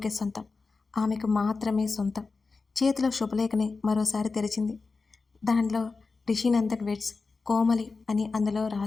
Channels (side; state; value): right; quieter; 4.2 dB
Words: సొంతం. ఆమెకు మాత్రమే సొంతం. చేతిలో శుభలేఖని మరోసారి తెరిచింది. దానిలో రిషినందన్ వెడ్స్ కోమలి అని అందులో